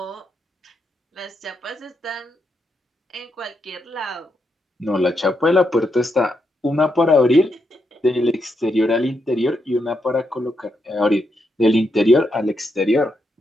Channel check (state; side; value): normal; both; correlation 0.82